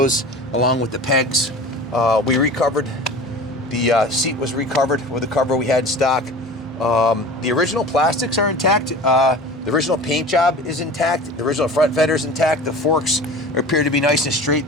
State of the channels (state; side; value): normal; both; correlation 0.38